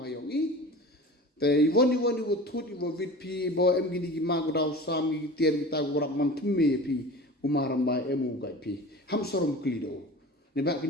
hayongi. The one you would thought you were with P. Bo em gini magudao sami tier kita gurap mantume P. Umaram by emu gai P. Ham sorom klido. Nebak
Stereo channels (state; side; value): normal; both; correlation 0.36